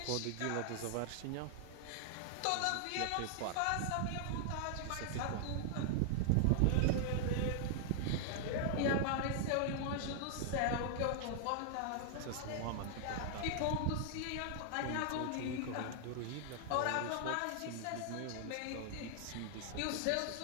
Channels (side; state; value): both; different; correlation -0.01